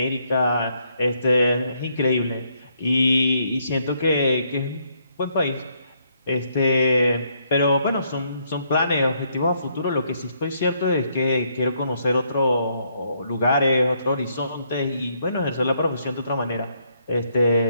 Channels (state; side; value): inverted; both; correlation -0.73